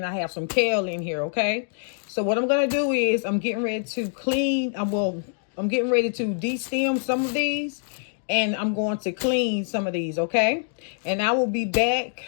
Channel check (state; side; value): silent; right; digital silence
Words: I have some kale in here. Okay, so what I'm gonna do is I'm getting ready to clean. I'm getting ready to de-stem some of these, and I'm going to clean some of these. Okay, and I will be back